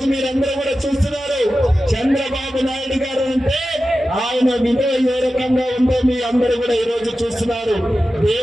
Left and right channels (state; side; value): normal; both; correlation 0.93